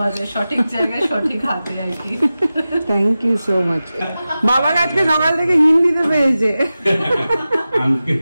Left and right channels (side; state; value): both; inverted; correlation -0.95